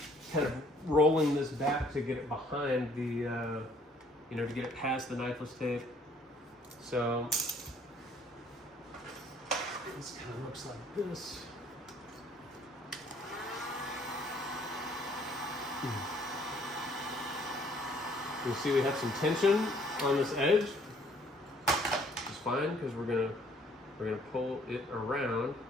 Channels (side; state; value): both; normal; correlation 0.61